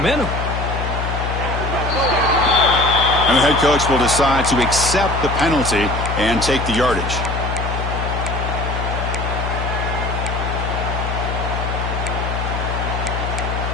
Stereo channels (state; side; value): noise; left; hum, 3 dB below the sound